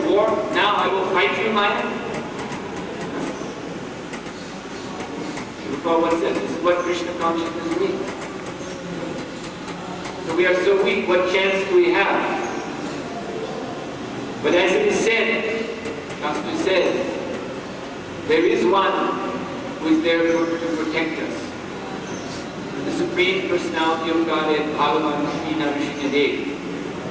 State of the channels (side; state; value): both; identical; correlation 1.00